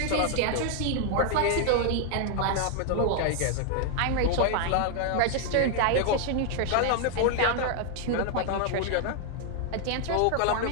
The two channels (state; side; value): different; both; correlation 0.00